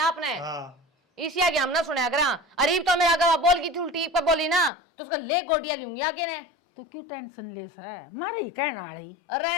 आपने? हाँ इसी आगे हम ना सुने अगर अरीब तो मेरा अगर बोल की थी उल्टी पर बोली ना तो उसका ले गोटियां लूंगी आगे ने। तो क्यों टेंशन ले सा, मारे ही कहना रही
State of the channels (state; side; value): drops out; right; at 4.7 s